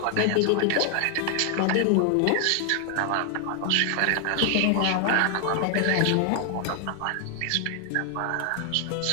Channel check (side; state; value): both; different; correlation 0.00